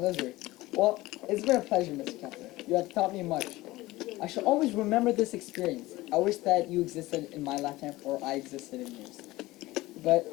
Well, it's been a pleasure, Mr. Kepler. You have taught me much. I shall always remember this experience. I wish that you existed in my lifetime or I existed in yours. But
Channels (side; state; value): right; quieter; 18.8 dB